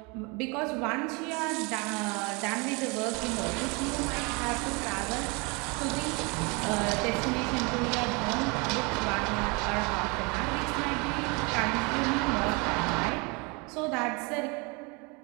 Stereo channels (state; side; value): quieter; left; 29.2 dB